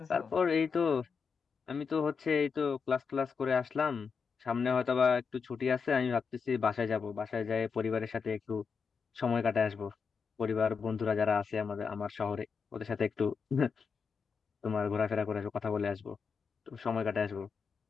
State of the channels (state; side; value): quieter; right; 5.7 dB